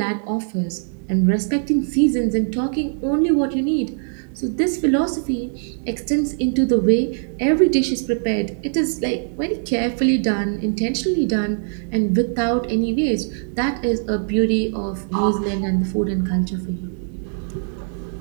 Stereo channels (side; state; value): left; silent; digital silence